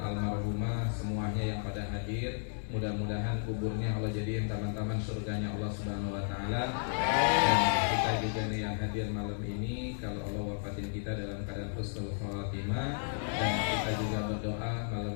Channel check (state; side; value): silent; right; digital silence